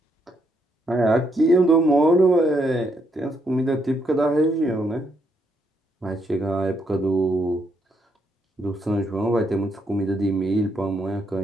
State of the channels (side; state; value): both; normal; correlation 0.75